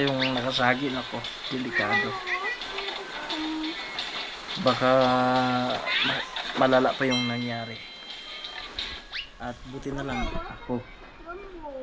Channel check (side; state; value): both; identical; correlation 1.00